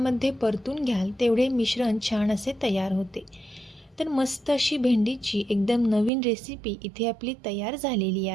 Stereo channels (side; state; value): left; drops out; at 6.1 s